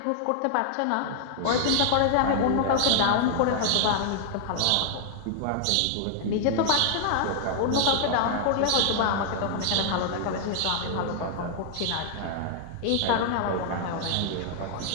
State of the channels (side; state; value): both; different; correlation -0.01